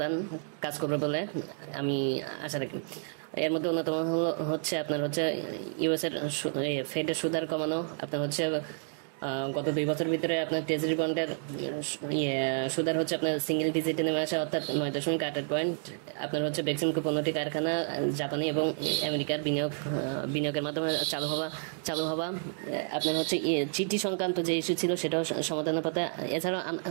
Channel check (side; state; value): left; silent; 58 dB below the other